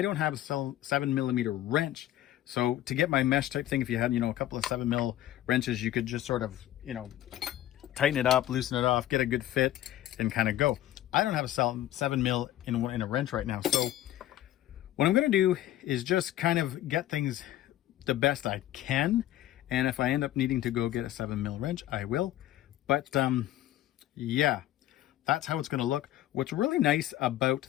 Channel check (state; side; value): quieter; right; 13.5 dB